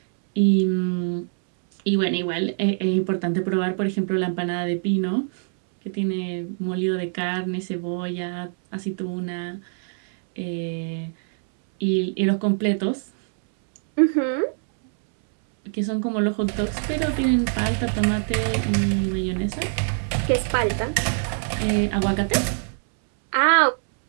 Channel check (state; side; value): silent; left; 63 dB below the other